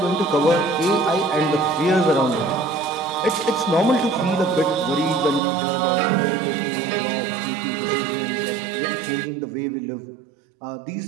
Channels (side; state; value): left; drops out; at 5.4 s